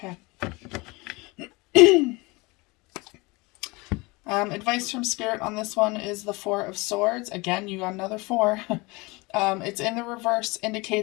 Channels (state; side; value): quieter; right; 24.8 dB